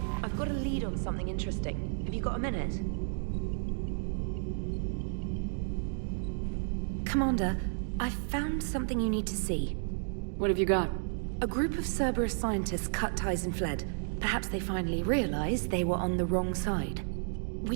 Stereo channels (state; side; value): silent; left; digital silence